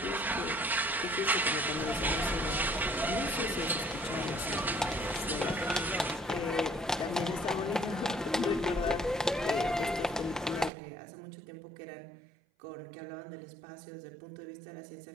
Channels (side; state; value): left; drops out; at 10.7 s